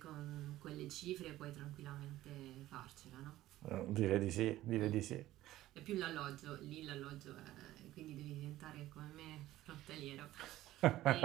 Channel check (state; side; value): quieter; left; 15.2 dB